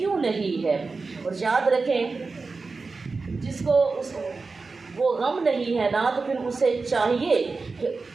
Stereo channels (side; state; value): left; quieter; 4.1 dB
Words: نہیں ہے۔ اور یاد رکھیں، جس کو وہ غم نہیں ہے نا تو پھر اسے چاہیے